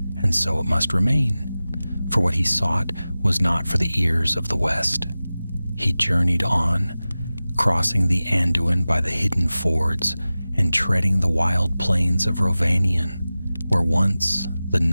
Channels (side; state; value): both; inverted; correlation -0.97